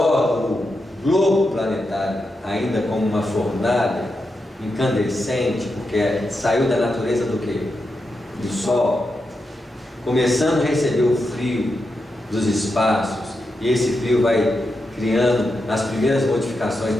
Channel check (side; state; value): both; normal; correlation 0.87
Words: globo planetário, ainda como uma fornalha incandescente, porque saiu da natureza do quê? Do Sol, começando a receber o frio dos espaços, e esse frio vai criando as primeiras modificações